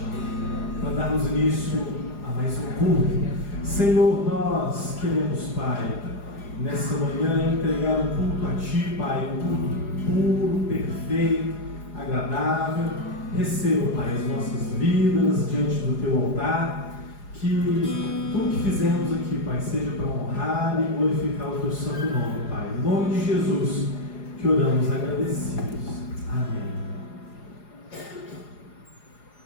para darmos início a mais um culto. Senhor, nós queremos, Pai, nessa manhã entregar um culto a Ti, Pai, um culto puro, perfeito, agradável. Receba, Pai, as nossas vidas diante do Teu altar. Que tudo que fizermos aqui, Pai, seja para honrar e glorificar o Teu santo nome, Pai. Em nome de Jesus que oramos agradecidos. Amém.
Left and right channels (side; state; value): right; late; 4.9 ms